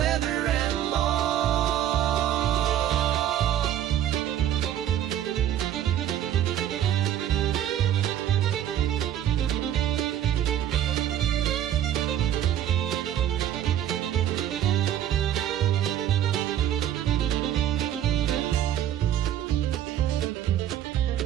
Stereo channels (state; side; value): quieter; left; 11.2 dB